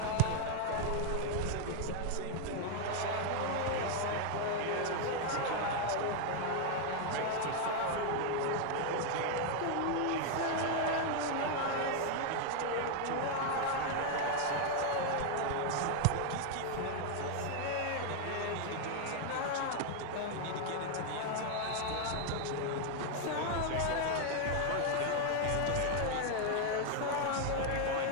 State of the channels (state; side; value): different; both; correlation 0.00